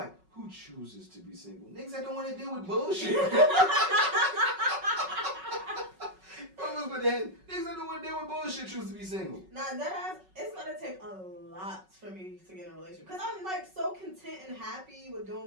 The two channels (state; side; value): late; left; 5.3 ms